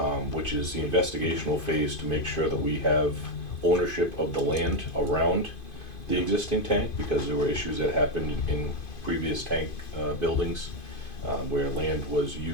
which is the investigational phase to make sure that we have ownership of the land around the existing tank, because there were issues that happened in previous tank buildings where land was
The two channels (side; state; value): right; late; 2.5 ms